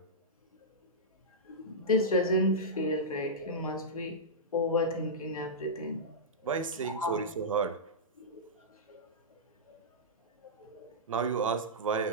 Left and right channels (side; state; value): both; normal; correlation -0.13